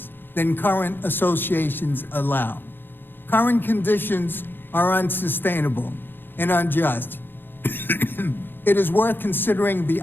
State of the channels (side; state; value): right; late; 0.099 ms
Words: than current associations allow. Current conditions are unsustainable and unjust. It is worth considering the